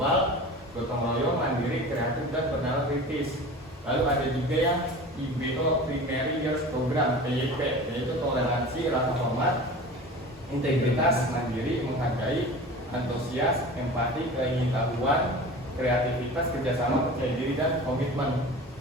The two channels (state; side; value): normal; both; correlation 0.36